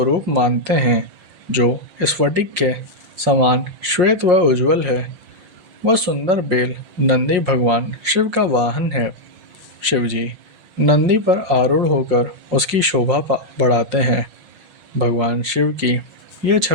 मानते हैं, जो स्फटिक के समान श्वेत व उज्ज्वल है, वह सुंदर बेल नंदी भगवान शिव का वाहन है। शिवजी नंदी पर आरूढ़ होकर उसकी शोभा बढ़ाते हैं। भगवान शिव की यह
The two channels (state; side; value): late; left; 5.6 ms